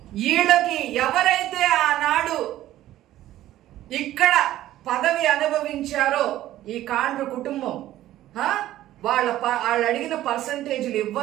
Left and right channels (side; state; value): left; quieter; 14.0 dB